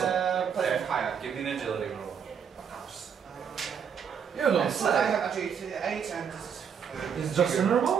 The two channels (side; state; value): left; quieter; 7.4 dB